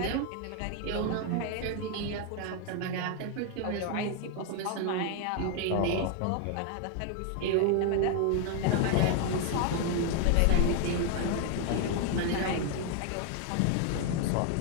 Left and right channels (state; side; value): different; both; correlation 0.00